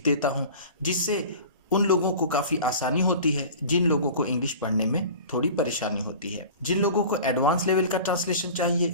देता हूँ, जिससे उन लोगों को काफ़ी आसानी होती है जिन लोगों को इंग्लिश पढ़ने में थोड़ी परेशानी होती है। जिन लोगों को एडवांस लेवल का ट्रांसलेशन चाहिए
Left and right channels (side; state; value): both; inverted; correlation -0.39